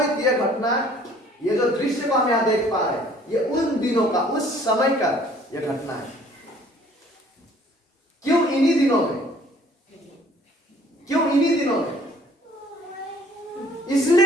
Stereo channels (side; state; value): both; normal; correlation 0.56